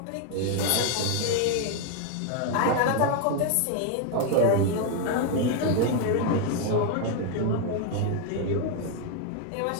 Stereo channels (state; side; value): different; both; correlation 0.01